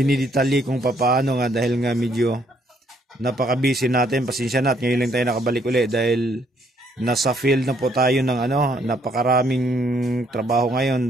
kung paano nga dahil nga medyo napaka-busy natin. Pasensya na at ngayon lang tayo nakabalik ulit dahil nasa field na po tayo ng napakaraming trabaho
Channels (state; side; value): normal; both; correlation 0.68